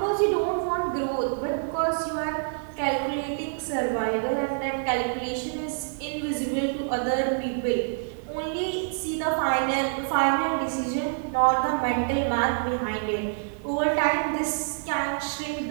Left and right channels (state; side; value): silent; left; digital silence